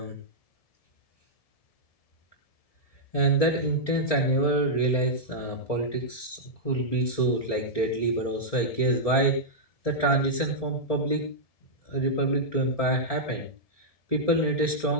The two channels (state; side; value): late; right; 1.7 ms